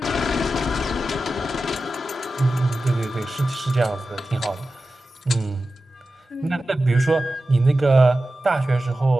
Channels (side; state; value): both; normal; correlation 0.93